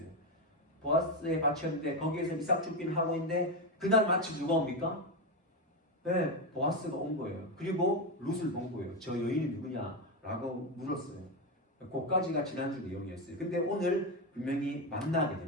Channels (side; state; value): both; normal; correlation 0.11